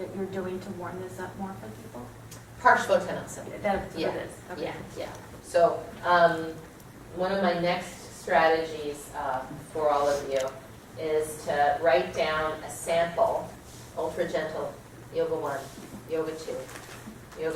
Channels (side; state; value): both; identical; correlation 1.00